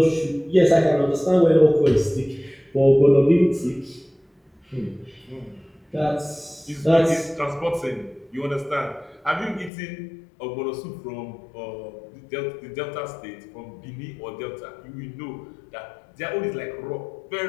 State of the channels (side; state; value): right; drops out; at 9.7 s